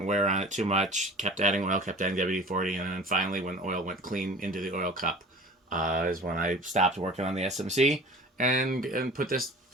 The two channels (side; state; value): both; normal; correlation 0.42